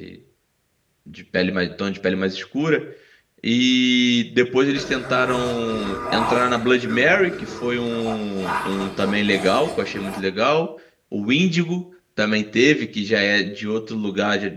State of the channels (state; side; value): identical; both; correlation 1.00